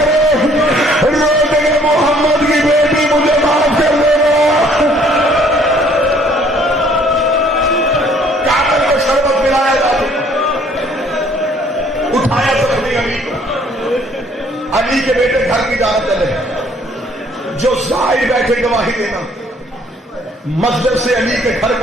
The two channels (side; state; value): both; normal; correlation 0.60